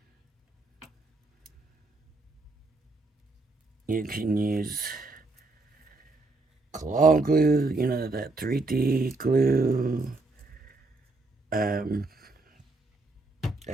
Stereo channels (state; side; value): quieter; left; 3.3 dB